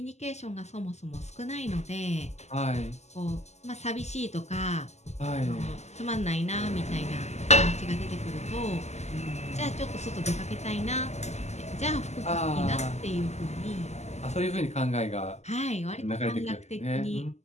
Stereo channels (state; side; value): late; right; 0.33 ms